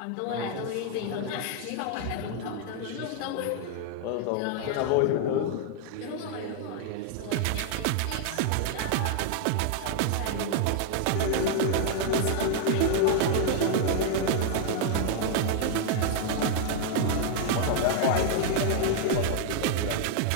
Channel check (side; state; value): both; different; correlation 0.00